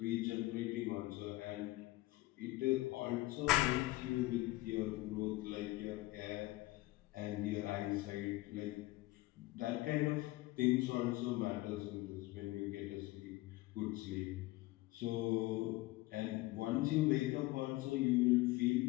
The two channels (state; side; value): quieter; right; 19.5 dB